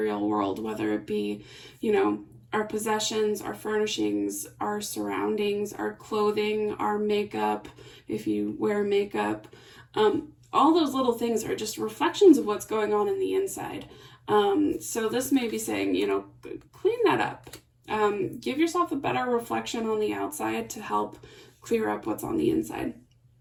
world, whether it be, you know, our possessions, our furnishings, our surroundings, our clothing, our makeup, if you wear makeup. All those little things are just reflections of what's going on in the inside. So this may be saying, you know, clean that up. Give yourself a better reflection on the outside to help clear up what's on the inside.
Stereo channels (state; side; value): identical; both; correlation 1.00